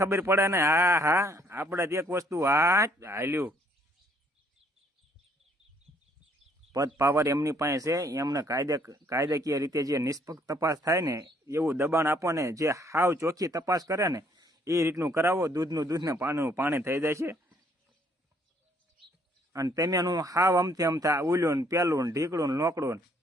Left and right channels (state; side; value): normal; both; correlation 0.65